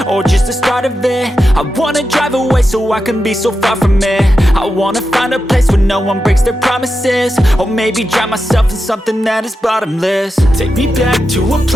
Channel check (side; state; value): both; normal; correlation 0.89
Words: or just the start of it? I wanna drive away so I can be so far from it. I wanna find a place where no one breaks their promises. Or maybe drown myself in something that is bottomless. Take me back to a